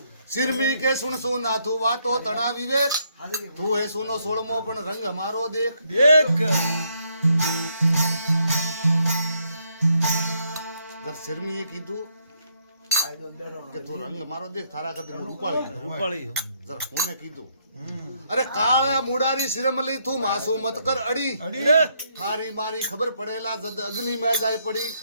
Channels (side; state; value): both; inverted; correlation -0.73